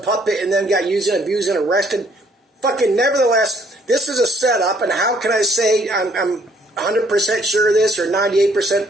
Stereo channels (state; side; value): normal; both; correlation 0.64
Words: and then got used and abused and arrested. Fucking nevertheless, this is a setup, and how can I say I'm 100% sure of this or 98%